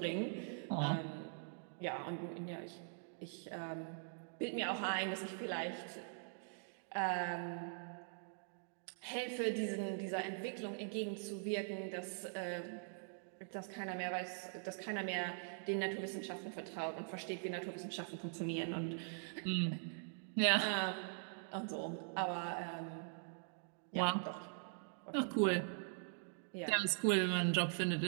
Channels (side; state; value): left; silent; digital silence